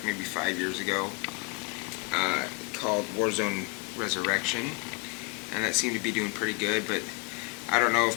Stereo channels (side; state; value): right; quieter; 27.7 dB